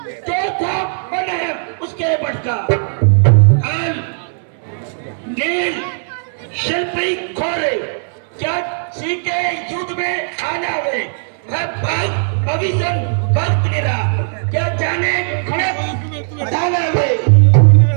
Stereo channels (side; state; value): left; silent; 64 dB below the other